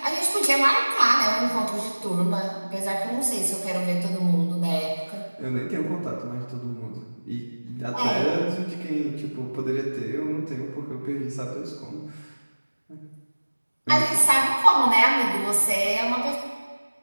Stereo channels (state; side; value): inverted; both; correlation -1.00